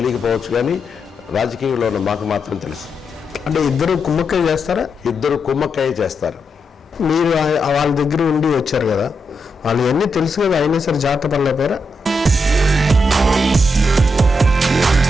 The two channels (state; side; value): normal; both; correlation 0.84